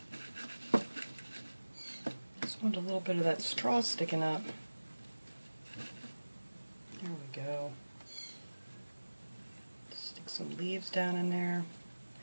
Just want a little bit of that straw sticking up. There we go. Stick some leaves down in there.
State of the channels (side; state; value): both; inverted; correlation -1.00